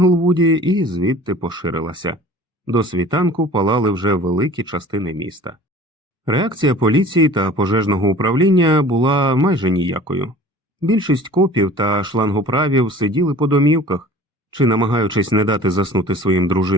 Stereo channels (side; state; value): both; normal; correlation 0.45